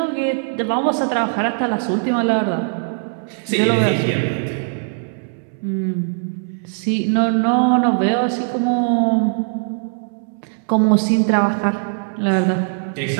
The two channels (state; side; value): silent; left; 66 dB below the other